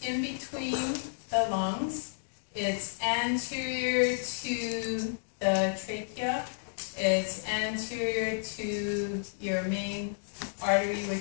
in between the lungs. It's anterior to the trachea. It's anterior to your main artery,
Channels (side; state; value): right; silent; digital silence